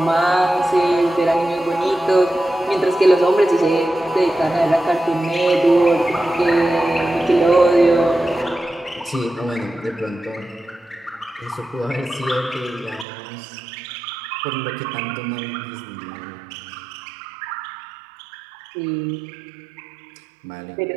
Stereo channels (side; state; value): left; drops out; at 13.1 s